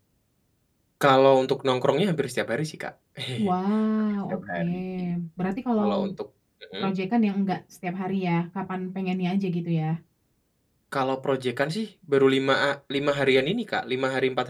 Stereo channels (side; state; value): both; identical; correlation 1.00